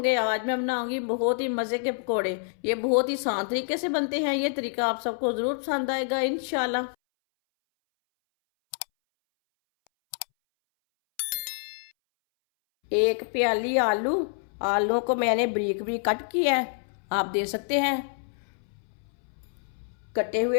आज मैं बनाऊंगी बहुत ही मजे के पकोड़े। ये बहुत ही आसान तरीके से बनते हैं। ये तरीका आप सबको जरूर पसंद आएगा इंशाल्लाह। एक प्याली आलू, आलूओं को मैंने बारीक बारीक कट किया है। आप दे सकते हैं। कटे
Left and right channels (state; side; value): silent; right; 60 dB below the other